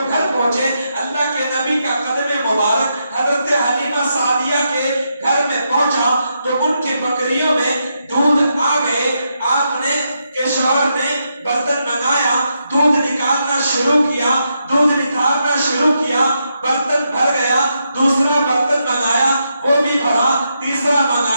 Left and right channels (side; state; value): both; inverted; correlation -0.82